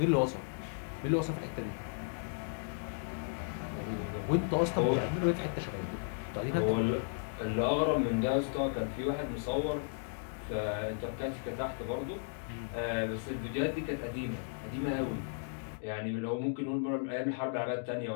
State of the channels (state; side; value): silent; right; digital silence